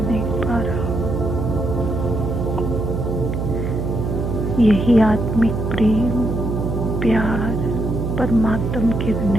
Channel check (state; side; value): noise; right; hum, 2 dB below the sound